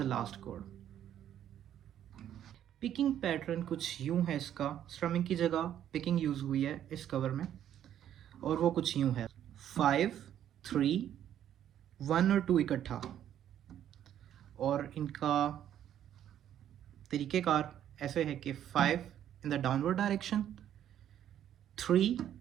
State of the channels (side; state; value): left; quieter; 10.7 dB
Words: last chord. Picking pattern कुछ यूं है, इसका strumming की जगह picking use हुई है इस cover में, और वो कुछ यूं है 5, 3, 1 और 2 इकट्ठा। और इनका तरीक़ेकार ऐसे है कि 5 in the downward direction, 3